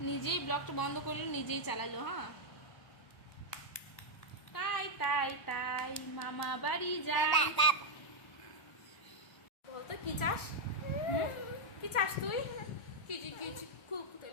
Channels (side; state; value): right; late; 1.0 ms